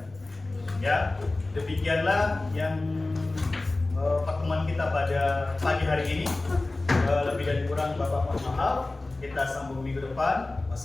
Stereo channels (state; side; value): quieter; right; 3.0 dB